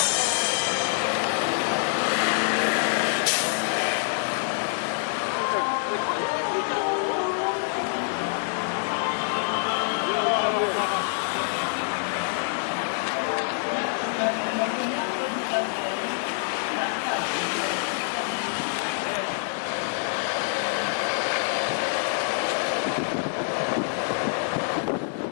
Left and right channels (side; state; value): right; silent; digital silence